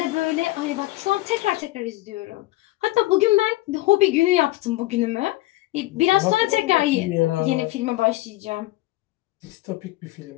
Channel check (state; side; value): quieter; right; 18.7 dB